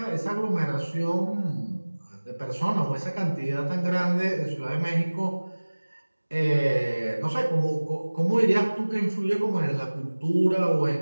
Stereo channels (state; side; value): inverted; both; correlation -1.00